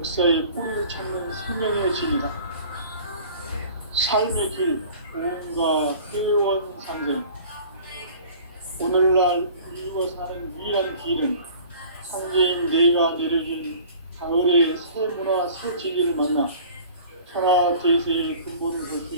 뿌리를 찾는 생명의 진이다. 삶의 길, 구원과 회원 상생. 오늘날 인류가 사는 유일한 길은 상제인 내가 내려준 가을의 새 문화 새 진리를 만나 천하 대세의 근본을 볼 수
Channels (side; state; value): both; inverted; correlation -0.46